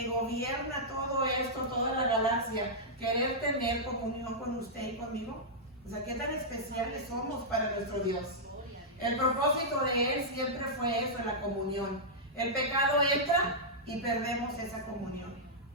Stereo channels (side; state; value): both; normal; correlation -0.10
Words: gobierna todo esto, toda la galaxia, querer tener comunión con usted y conmigo. O sea, qué tan especiales somos para nuestro Dios. El propósito de Él siempre fue eso, la comunión. El pecado entra y perdemos esa comunión.